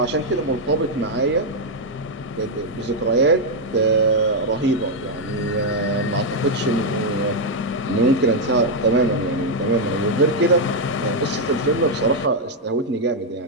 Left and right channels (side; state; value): both; normal; correlation 0.00